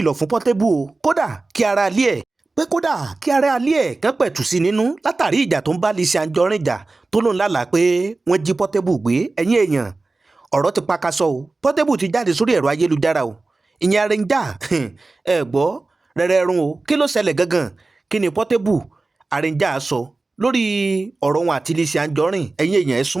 fún Portable o kódà kí ara lé ẹ̀ pé kódà kí ara alẹ́ ẹ̀ kán pẹ̀tù sí nínú látàrí ìjà tó ń bá Lizzy Anjorin jà tó lóun lálàá pé wọ́n jí Portable gbé ẹ̀yìn èèyàn ọ̀rọ̀ ti pakasọ o Portable ti jáde sórí ẹ̀rọ ayélujára o ìyẹn Arranger ẹ gbọ́ rẹ́rẹ́rún o kí ló ṣẹlẹ̀ gangan kí ni Portable Arranger sọ lórí ọ̀rọ̀ wọn àti Lizzy Anjorin ẹ̀yin èèyàn ẹ̀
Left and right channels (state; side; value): quieter; left; 3.4 dB